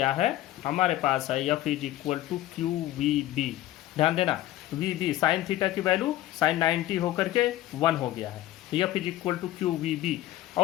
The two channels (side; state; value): right; quieter; 14.7 dB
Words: है, हमारे पास है F is equal to QVB। ध्यान देना, VB साइन थीटा की वैल्यू साइन 90 होकर के 1 हो गया है, F is equal to QVB,